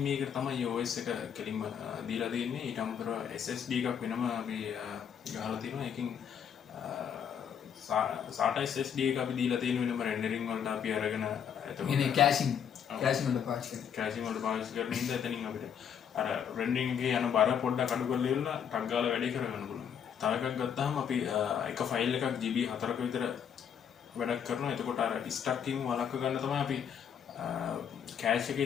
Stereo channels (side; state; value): right; quieter; 8.1 dB